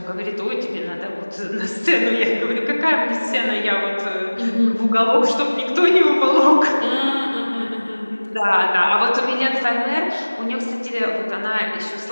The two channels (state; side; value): inverted; both; correlation -1.00